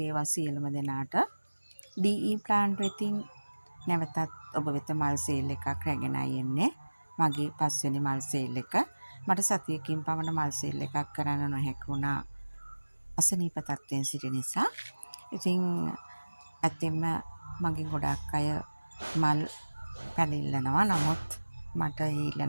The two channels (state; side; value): inverted; both; correlation -1.00